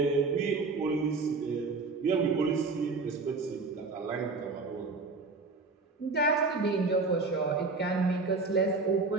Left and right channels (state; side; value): quieter; left; 4.0 dB